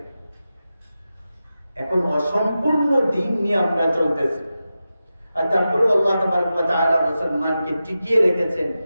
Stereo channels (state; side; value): inverted; both; correlation -0.92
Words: এখন অসম্পূর্ণ দিন নিয়ে আমরা চলতেছি, আর তারপরেও আল্লাহ তাবারক ওয়া তাআলা মুসলমানকে টিকিয়ে রেখেছেন।